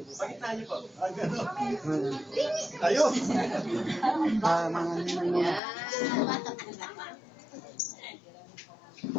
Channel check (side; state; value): right; drops out; at 5.6 s